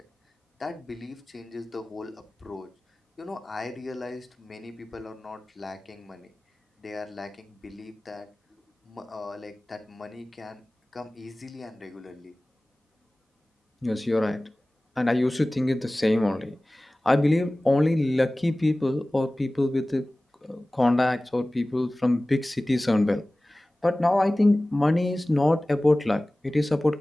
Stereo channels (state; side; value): normal; both; correlation 0.98